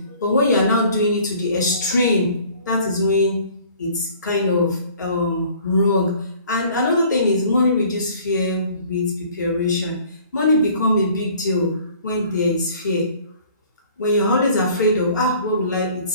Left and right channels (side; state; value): both; inverted; correlation -0.53